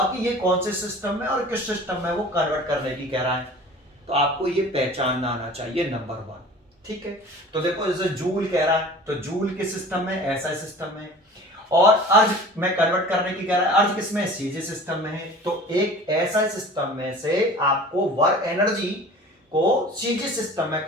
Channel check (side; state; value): both; normal; correlation 0.42